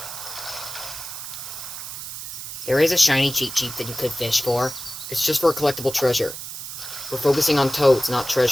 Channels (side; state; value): right; noise; hiss, 9 dB below the sound